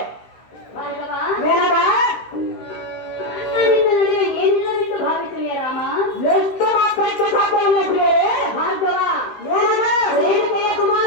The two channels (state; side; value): late; right; 15 ms